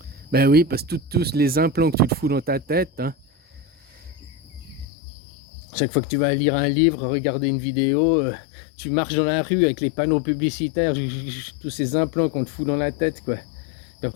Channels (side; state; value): right; drops out; at 4.9 s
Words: Ben oui, parce que tous les implants que tu te fous dans ta tête, hein. Chaque fois que tu vas lire un livre, regarder une vidéo, tu marches dans la rue avec les panneaux publicitaires, tous ces implants qu'on te fout dans la tête, quoi. Puis